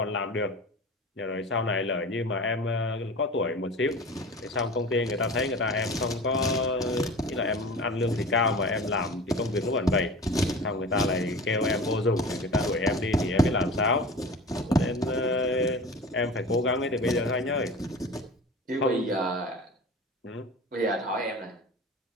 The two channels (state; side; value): normal; both; correlation 0.35